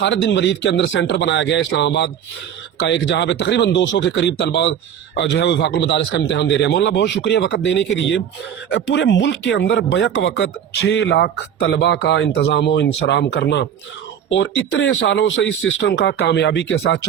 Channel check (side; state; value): left; quieter; 9.0 dB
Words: बिन वलीद के अंदर सेंटर बनाया गया है इस्लामाबाद का एक, जहाँ पे तकरीबन 200 के करीब तलबा जो है वफाकुल मदारिस का इम्तिहान दे रहे हैं। मौलाना बहुत शुक्रिया वक्त देने के लिए। पूरे मुल्क के अंदर बैक वक्त 6 लाख तलबा का इंतज़ाम व इंसराम करना और इतने सालों से इस सिस्टम का कामयाबी के साथ